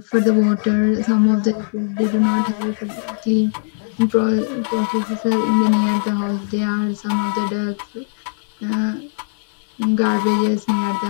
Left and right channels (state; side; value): silent; right; digital silence